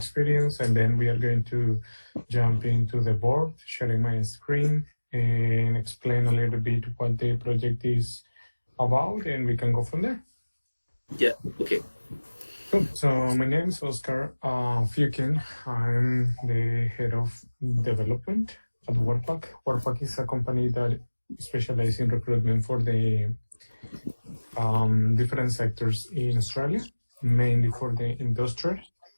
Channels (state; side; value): inverted; both; correlation -1.00